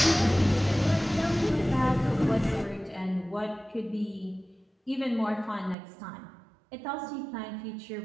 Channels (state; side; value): drops out; left; at 5.8 s